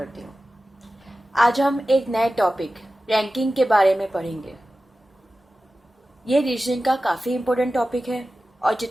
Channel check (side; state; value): both; normal; correlation 0.95